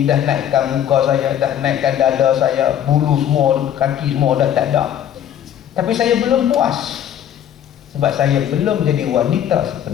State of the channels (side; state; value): right; quieter; 10.2 dB